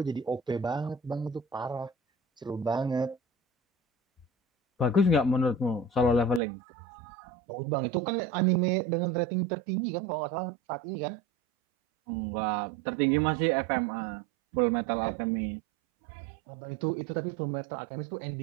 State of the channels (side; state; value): left; drops out; at 6.4 s